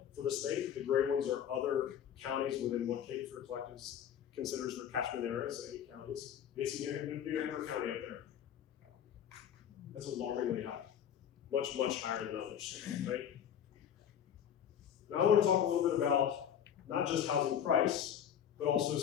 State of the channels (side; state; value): right; quieter; 9.2 dB